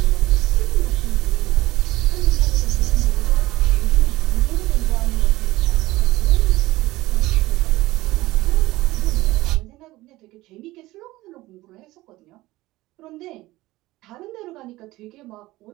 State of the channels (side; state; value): left; quieter; 18.3 dB